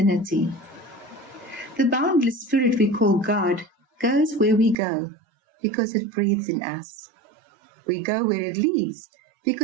The boundless spirit we call God goes where we go because it breathes in us. We go where it leads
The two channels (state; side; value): drops out; left; at 4.8 s